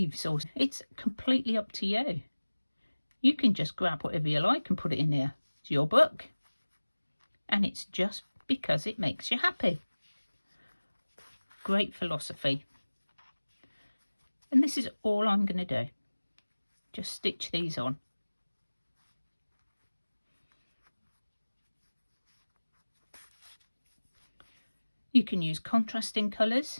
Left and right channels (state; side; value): inverted; both; correlation -1.00